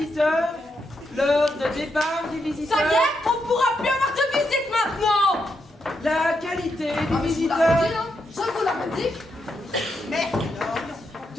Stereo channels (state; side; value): normal; both; correlation 0.82